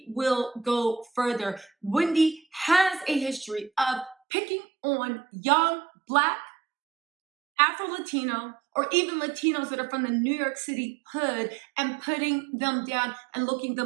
will go further. Wendy has a history of picking on young Black, Afro-Latino, or even Latinos that are from the New York City hood and putting them down and looking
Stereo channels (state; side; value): drops out; left; at 4.2 s